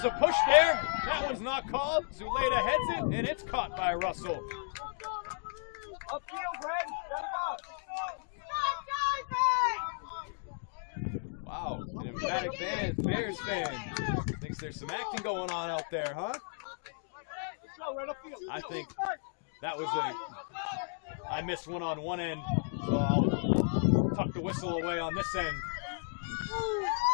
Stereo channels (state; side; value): silent; right; digital silence